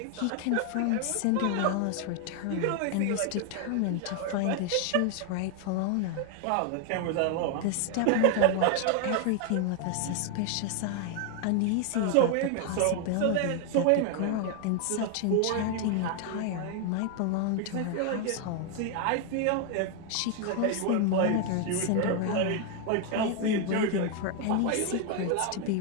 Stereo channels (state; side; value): different; both; correlation 0.01